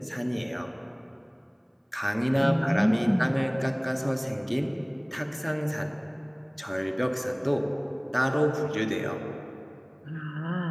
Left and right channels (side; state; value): both; identical; correlation 1.00